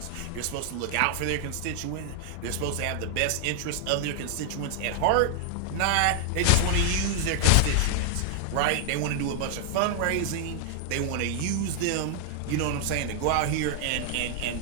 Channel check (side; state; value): both; different; correlation 0.00